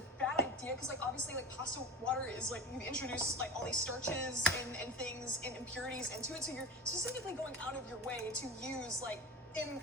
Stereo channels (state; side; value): normal; both; correlation 0.31